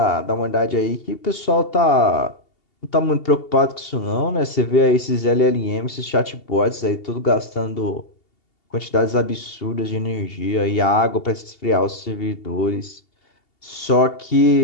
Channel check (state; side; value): late; right; 2.8 ms